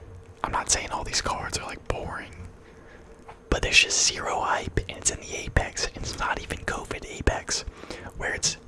I'm not saying all these cards are like boring. But there's just zero hype, and it's in the Apex, and it's not even COVID Apex, where it's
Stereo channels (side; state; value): both; identical; correlation 1.00